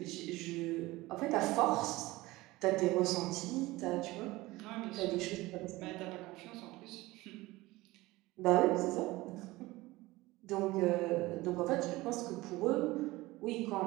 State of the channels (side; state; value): left; quieter; 19.7 dB